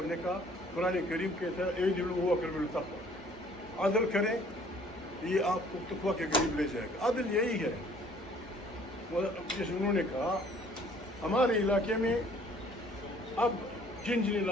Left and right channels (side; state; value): both; normal; correlation 0.57